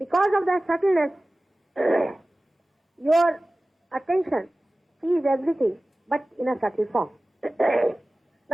of that subtleness, your attention sees everything, but in a subtle form.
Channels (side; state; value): both; normal; correlation 0.97